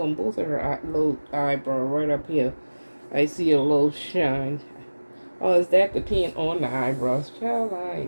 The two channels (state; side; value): inverted; both; correlation -1.00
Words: both of her little eyebrow right up here, I see a little shine. Oh, is that the paint on the eyebrows? Child, I